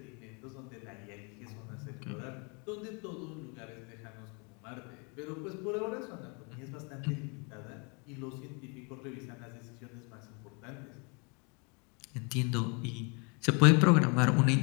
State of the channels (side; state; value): right; quieter; 33.3 dB